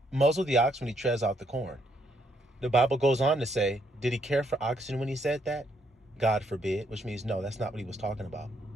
muzzle the ox when he treads out the corn, the Bible goes on to say, did he care for oxen when he said that? God forbid, which means no, that's not what he was talking about.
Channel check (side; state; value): both; normal; correlation 0.73